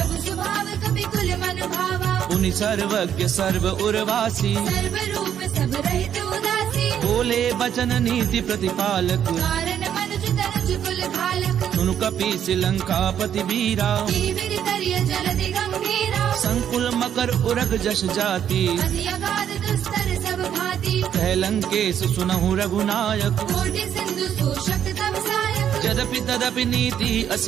स्वभाव कपि कुल मन भावा उनि सर्वज्ञ सर्व उर्वासी सर्व रूप सब रहित उदासी बोले बचन नीति प्रतिपालक कारण मनुज तनुज कुल घालक सुनु कपीस लंकापति वीरा जीवित करिय जलधि गंभीरा संकुल मकर उरग जस जाति अति अगाध दुस्तर सब भांति कह लंकेश सुनहु रघुनायक कोटि सिंधु शोषक तब सायक यद्यपि तदपि नीति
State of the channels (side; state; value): left; quieter; 9.4 dB